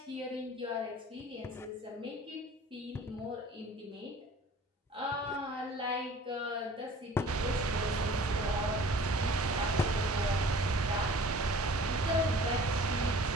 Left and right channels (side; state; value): both; normal; correlation 0.47